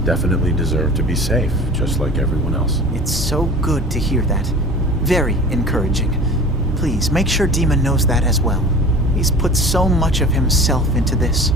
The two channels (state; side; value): normal; both; correlation 0.40